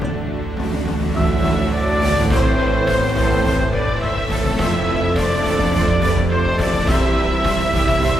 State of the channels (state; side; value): normal; both; correlation 0.84